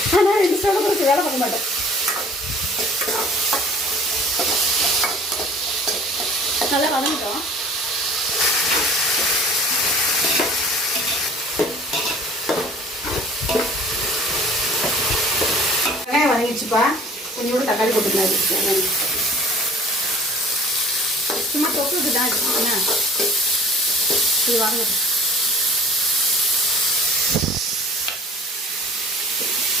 ஆனால் 2 ஸ்டவ்வில் கொடுத்து வேலை பார்க்க மாட்டேன். நல்லா வதங்கிட்டோம். வெங்காயம் வதங்கிடுச்சுப்பா. கொஞ்சம் கூட தக்காளி போட்டுக்கலாம். சும்மா தொக்குக்கு தான் வச்சுக்கோங்க. இது வாங்க,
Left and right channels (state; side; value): normal; both; correlation 0.48